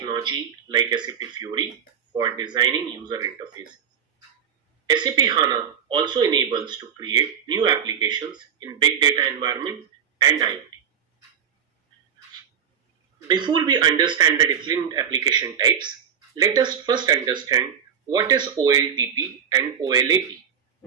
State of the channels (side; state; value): left; quieter; 7.9 dB